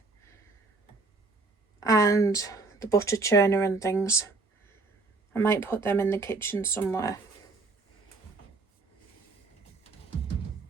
and the butter churner and things. I might put them in the kitchen somewhere.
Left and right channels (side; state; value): left; quieter; 3.7 dB